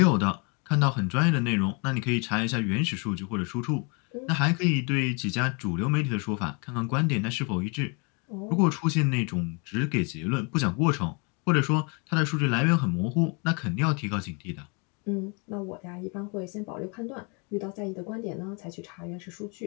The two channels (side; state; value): right; quieter; 33.4 dB